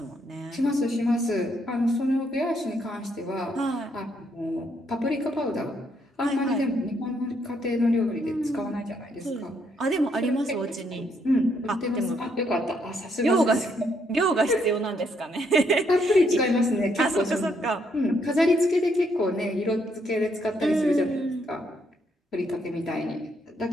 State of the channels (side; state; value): both; normal; correlation 0.73